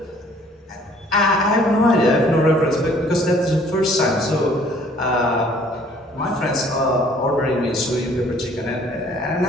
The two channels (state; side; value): normal; both; correlation 0.57